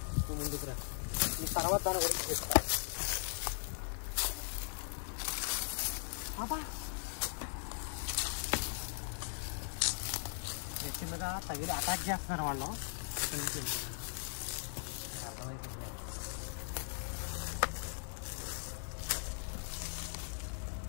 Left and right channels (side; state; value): right; silent; digital silence